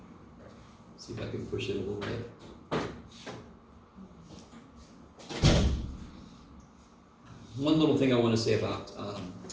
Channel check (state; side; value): identical; both; correlation 1.00